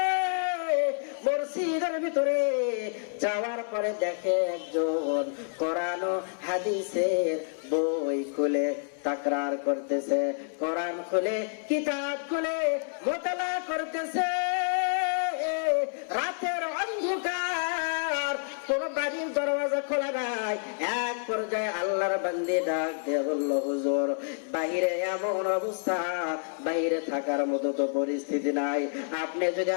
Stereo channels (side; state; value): right; silent; 59 dB below the other